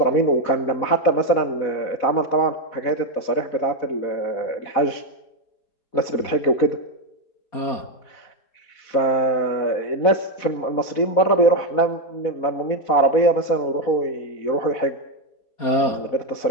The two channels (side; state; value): right; late; 4.1 ms